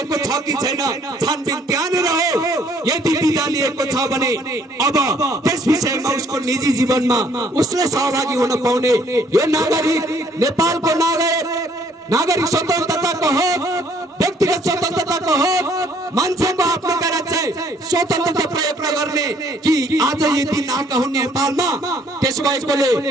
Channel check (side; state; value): both; normal; correlation 0.63